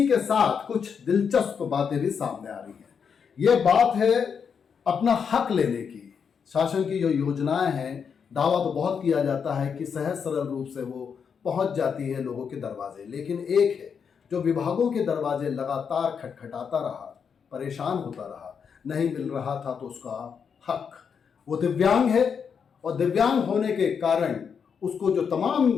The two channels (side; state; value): right; quieter; 6.6 dB